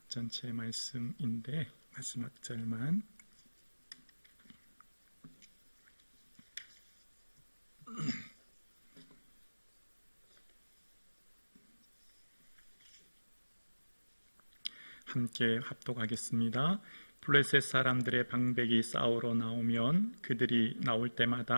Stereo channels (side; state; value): both; inverted; correlation -1.00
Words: 전체 말씀인데 마지막 절만. 함께 합독하겠습니다. 블레셋 사람들의 방백이 싸우러 나오면 그들이 나올